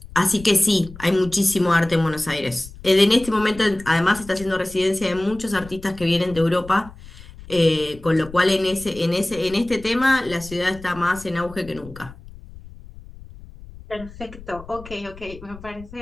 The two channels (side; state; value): left; noise; rumble, 18 dB below the sound